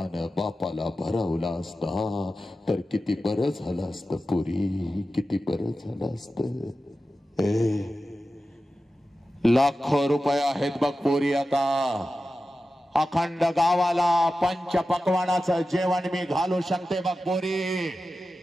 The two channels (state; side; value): normal; both; correlation 0.93